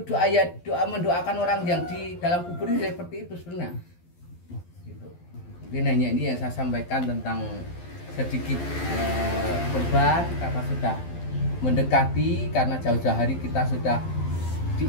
doa mendoakan orang yang di dalam kubur ini seperti itu sebenarnya. Gitu. Mungkin hanya ini yang saya sampaikan tentang sedikit kurban karena sudah mendekati, karena jauh-jauh hari kita sudah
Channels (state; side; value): late; right; 12 ms